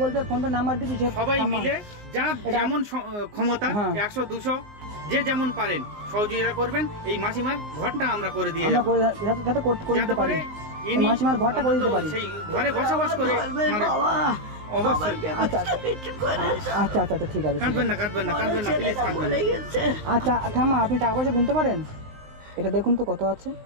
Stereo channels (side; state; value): left; late; 19 ms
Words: pay phone pay number দিচ্ছি, সবাই মিলে যার যেমন ক্ষমতা 100-200 যে যেমন পারেন সহযোগিতা করবেন। এই মাসিমার ঘরটা আমরা করে দিয়ে যাব, যাতে পারি মাসিমার ঘরটা করে দিতে পারি, সেই ঘরে বসবাস করে। অবশ্যই। আচ্ছা আচ্ছা আচ্ছা ঠিক আছে, কাঁদবেন না প্লিজ, কাঁদবেন না। আচ্ছা ঠাম্মা, আপনি টাকা পয়সা গুনতে পারেন? এটা দেখুন তো কত আছে,